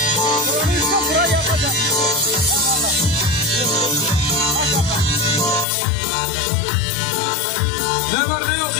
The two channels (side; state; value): right; drops out; at 5.7 s